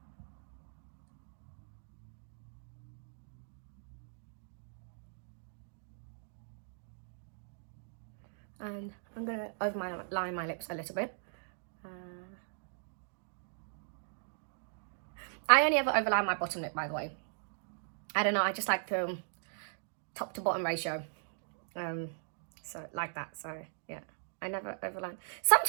And I'm going to overline my lips a little bit. I only ever overline my bottom lip, by the way. I don't know, I just like the top to bottom ratio. So like that, so yeah, I never overline.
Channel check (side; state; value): left; silent; digital silence